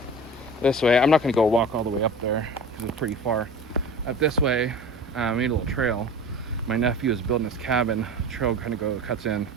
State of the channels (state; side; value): normal; both; correlation 0.37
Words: this way, I'm not going to go walk all the way up there because it's pretty far. Up this way, I made a little trail. My nephew is building his cabin. Trail kind of cuts in